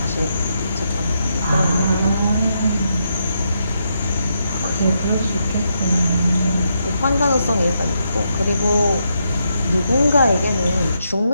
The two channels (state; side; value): inverted; both; correlation -0.80